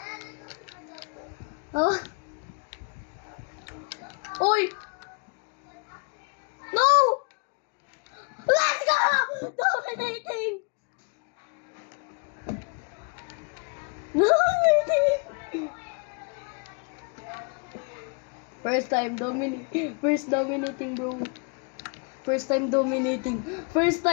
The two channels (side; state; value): right; quieter; 34.6 dB